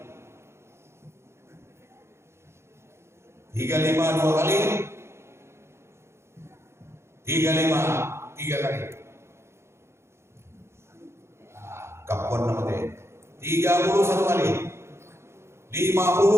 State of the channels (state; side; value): late; left; 0.13 ms